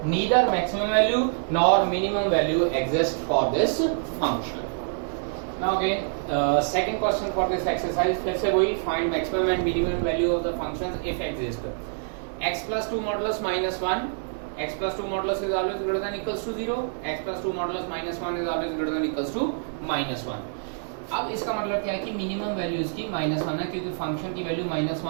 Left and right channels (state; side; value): silent; left; digital silence